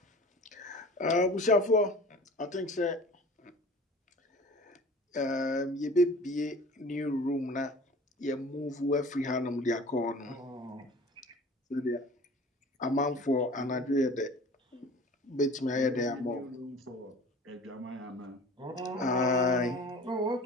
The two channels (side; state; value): both; normal; correlation 0.43